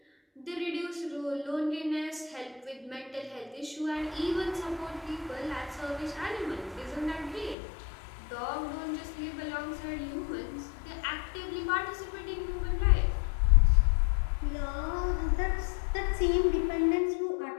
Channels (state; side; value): drops out; right; at 7.6 s